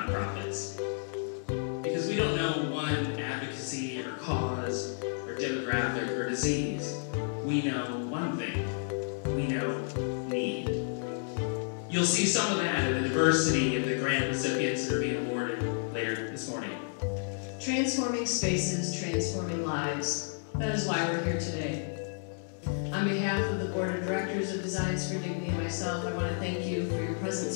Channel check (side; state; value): right; silent; digital silence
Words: Because we don't know one advocacy or cause or demographic or disease. We know one thing. We know need. You'll see some of that in the diversity of the grant recipients that are being awarded later this morning. Transforming spaces, transforming lives. That is why we're here today. On behalf of the Board of Directors of Designs for Dignity and myself, I want to thank you for your